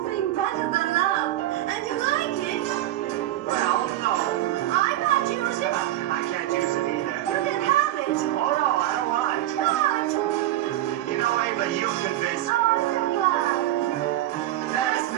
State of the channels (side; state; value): left; quieter; 14.3 dB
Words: better than love, and you like it... Well, no. I might use it. I can't use it either. You can have it. Oh, no, I don't want it. What? You know, Ava, you convinced me. Oh, I'm glad. There's